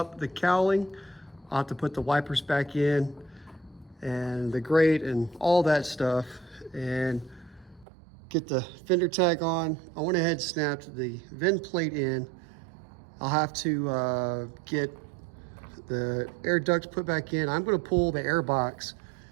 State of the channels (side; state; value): left; drops out; at 7.9 s